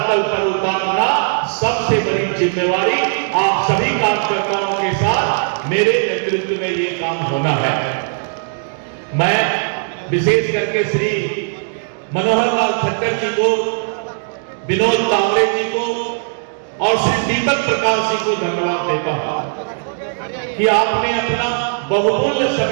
पर उतारना सबसे बड़ी जिम्मेवारी आप सभी कार्यकर्ताओं के साथ मेरे नेतृत्व में ये काम होना है। मैं विशेष करके श्री मनोहर लाल खट्टर जी को, विनोद तावड़े जी को और श्री दीपक प्रकाश जी को धन्यवाद देता हूं कि आपने अपना बहुमूल्य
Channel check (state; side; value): silent; left; digital silence